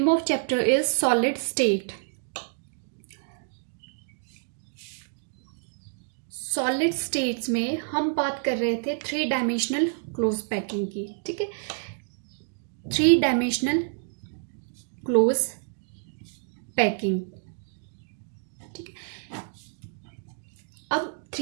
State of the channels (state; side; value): silent; left; digital silence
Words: of chapter is solid state. Solid states में हम बात कर रहे थे three dimensional close packing की. ठीक है, थ्री डायमेंशनल क्लोज पैकिंग. ठीक है, अब